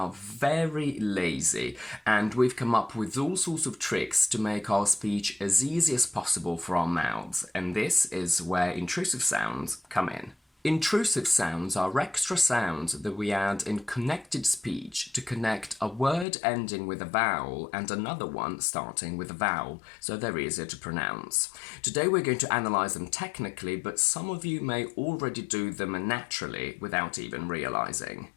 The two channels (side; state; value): right; drops out; at 16.2 s